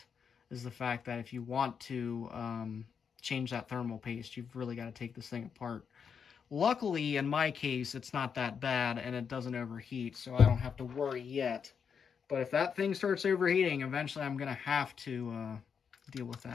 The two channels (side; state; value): right; quieter; 6.7 dB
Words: fact that if you want to change that thermal paste, you've really got to take this thing apart. Luckily, in my case, it's not that bad, and it doesn't overheat, so I don't have to worry yet. But if that thing starts overheating, eventually I'm going to have to deal with